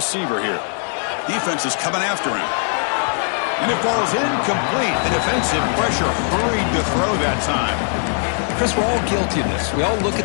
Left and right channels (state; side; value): silent; right; 55 dB below the other